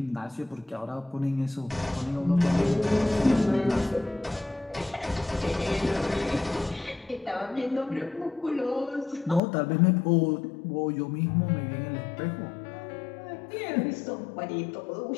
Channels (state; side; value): drops out; right; at 9.4 s